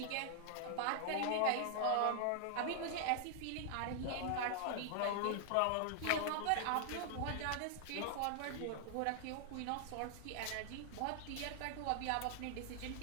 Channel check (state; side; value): different; both; correlation -0.01